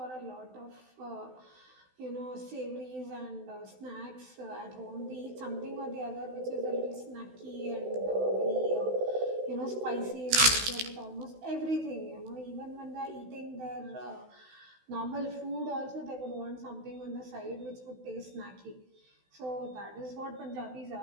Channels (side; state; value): left; late; 16 ms